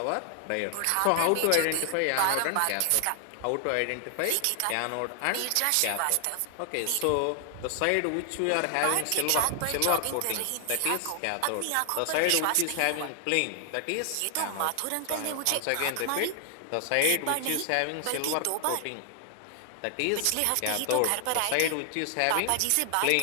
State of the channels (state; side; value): different; both; correlation 0.00